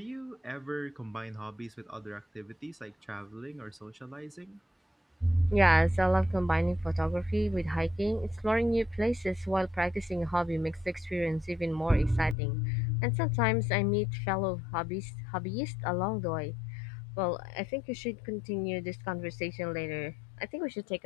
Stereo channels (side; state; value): right; drops out; at 12.4 s